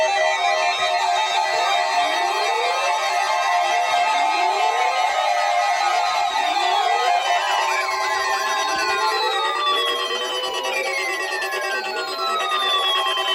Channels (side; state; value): both; identical; correlation 1.00